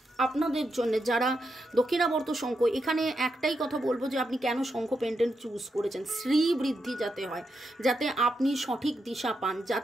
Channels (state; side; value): normal; both; correlation 0.84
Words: আপনাদের জন্য যারা দক্ষিণাবর্ত শঙ্খ, এখানে একটাই কথা বলবো যে আপনি কেন শঙ্খ পেন্ডেন্ট চুজ করেছেন, শ্রী বৃদ্ধি যাতে হয়, যাতে আপনি সঠিক দিশা পান,